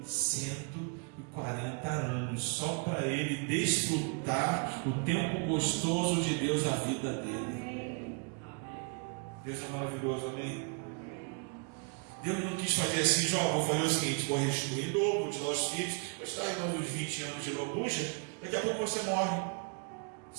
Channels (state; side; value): quieter; left; 37.5 dB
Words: 140 anos, só para ele desfrutar o tempo gostoso de Deus na vida dele. Deus é maravilhoso, amém? Deus não quis fazer assim, Jó, vou fazer o seguinte, vou restituir em dobro, vou te dar os filhos, vou te dar mais uns 20 anos de lambuja, daqui a pouco você morre.